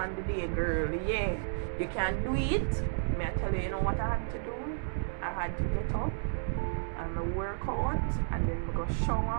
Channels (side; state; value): left; silent; digital silence